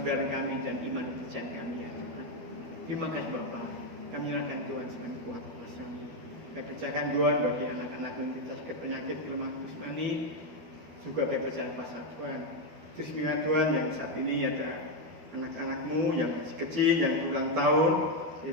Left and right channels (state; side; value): late; left; 12 ms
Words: kami dan iman percayaan kami ya Tuhan. Terima kasih Bapak. Kami nyerahkan Tuhan sebagai kuat kuasa-Mu. Kami percayakan Tuhan bagi anak-anak yang sakit penyakit kelemahan jasmani, juga kami percaya kuasa Tuhan. Terus minta Tuhan yang saat ini ada anak-anak-Mu yang masih kecil yang ulang tahun,